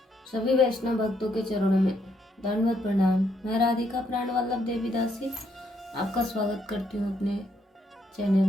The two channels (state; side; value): normal; both; correlation 0.74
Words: सभी वैष्णव भक्तों के चरणों में दंडवत प्रणाम। मैं राधिका प्राण वल्लभ देवी दासी आपका स्वागत करती हूँ अपने चैनल